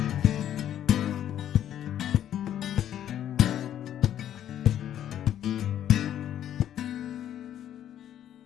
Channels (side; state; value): right; quieter; 10.8 dB